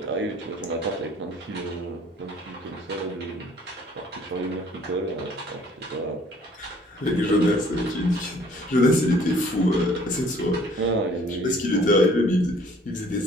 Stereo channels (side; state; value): both; normal; correlation 0.57